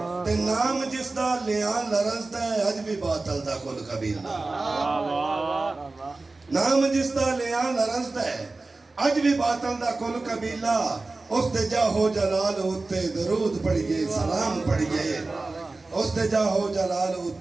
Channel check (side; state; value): left; quieter; 3.4 dB